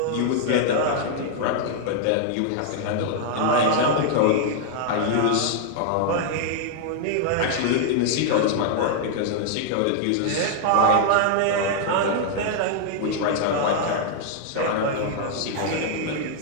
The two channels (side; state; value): both; different; correlation -0.01